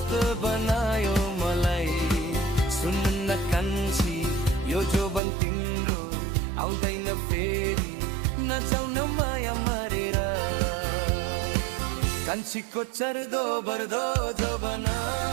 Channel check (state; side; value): drops out; left; at 5.2 s